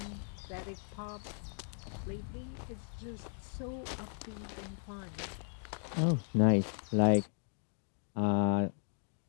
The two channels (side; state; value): right; silent; 53 dB below the other